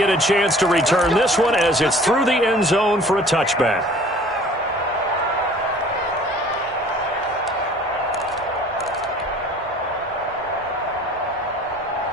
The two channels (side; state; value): both; normal; correlation 0.50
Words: a chance to return this one as it's through the end zone for a touchback.